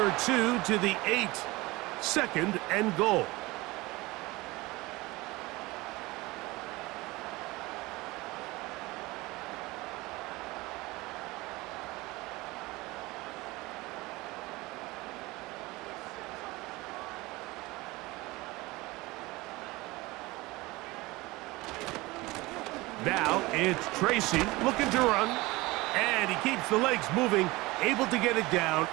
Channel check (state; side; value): quieter; left; 21.4 dB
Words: two to the 8. 2nd and goal. Now it's Tracy looking to run, and he keeps the legs moving, able to get it down